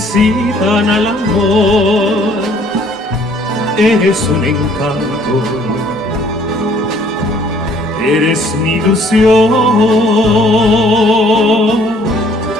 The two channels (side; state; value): both; normal; correlation 0.60